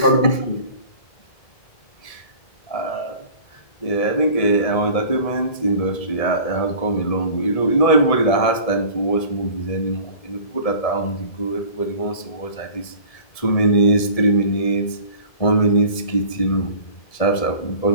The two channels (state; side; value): late; right; 1.7 ms